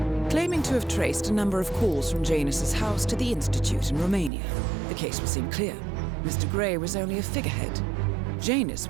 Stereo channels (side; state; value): left; drops out; at 4.3 s